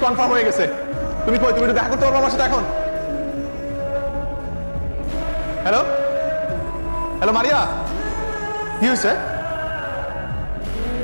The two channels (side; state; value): both; inverted; correlation -1.00